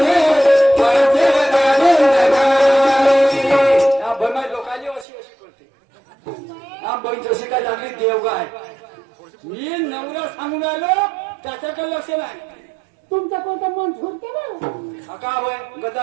पुऱ्या सांगून राहिलो त्याच्याकडे लक्ष नाही. तुमचं कोणतं मन झुरते ना का होय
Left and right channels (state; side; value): drops out; left; at 5.1 s